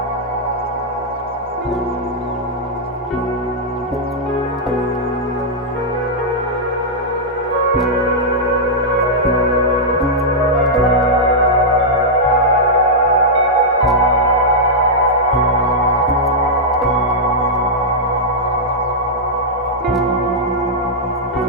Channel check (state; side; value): normal; both; correlation -0.07